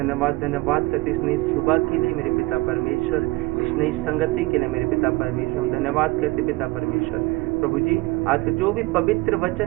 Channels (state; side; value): quieter; left; 21.6 dB